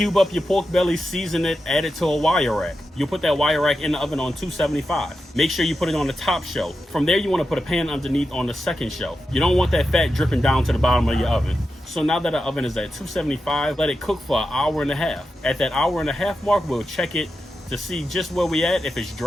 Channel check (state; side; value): normal; both; correlation 0.89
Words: up your pork belly, season it, add it to a wire rack. You'll put that wire rack in the oven on 275. Make sure you put it on the top shelf. From there, you want to put a pan underneath on the second shelf. You don't want that fat dripping down to the bottom of your oven. So now that the oven is at 275, let it cook for an hour and a half. At that hour and a half mark, we'll check it to see just where we at. If it's